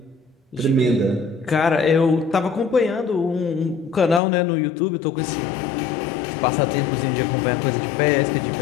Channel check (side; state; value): right; drops out; at 4.2 s